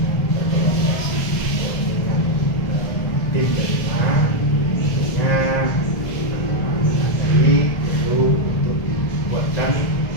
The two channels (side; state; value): right; late; 1.6 ms